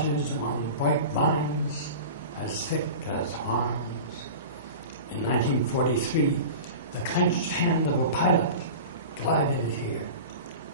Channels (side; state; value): both; inverted; correlation -0.33